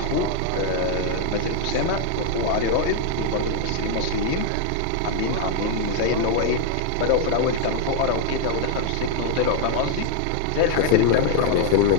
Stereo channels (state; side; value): different; both; correlation 0.00